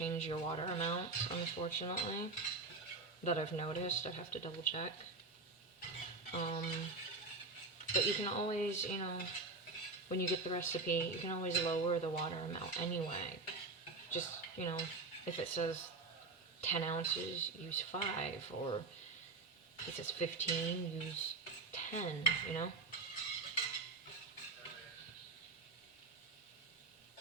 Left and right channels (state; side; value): quieter; left; 3.8 dB